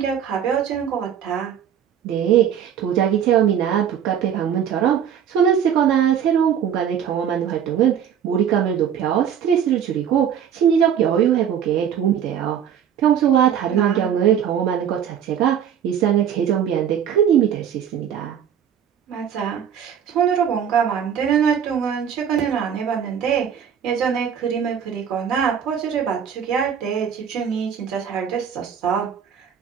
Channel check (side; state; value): left; quieter; 8.7 dB